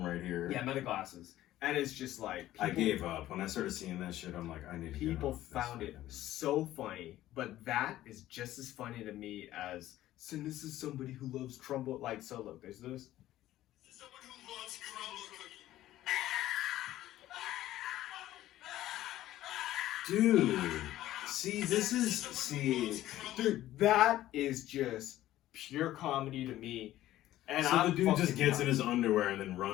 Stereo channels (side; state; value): right; quieter; 14.3 dB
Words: right here. Yeah, meta glasses. And it's just like I gave up when I started seeing that shit. I'm like, I need to. People found it so funny, but that is just as funny to me as. So this is somebody who loves crumble. Like, so look, there's this. Someone who loves crumble cookie. Dude, see, Dude, that is just pure comedy to me. And so I'm the dude just gets in in his underwear and then